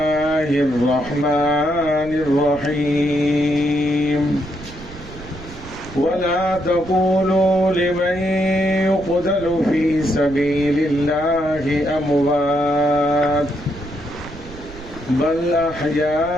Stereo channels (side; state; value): right; noise; rumble, 16 dB below the sound